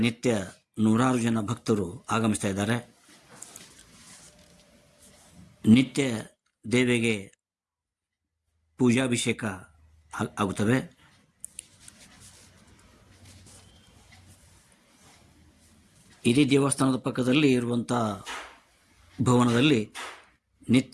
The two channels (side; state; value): both; identical; correlation 1.00